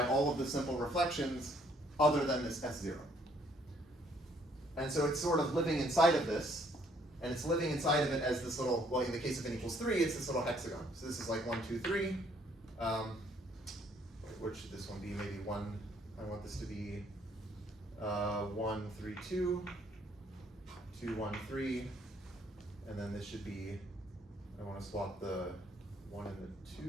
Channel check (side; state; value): both; normal; correlation 0.65